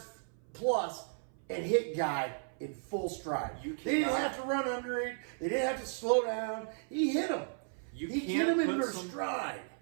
plus and hit guy in full stride. You They didn't cannot- have to run under it. They didn't have to slow down. He hit him. You He hit can't him in put their some- stride.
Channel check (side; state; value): left; silent; 55 dB below the other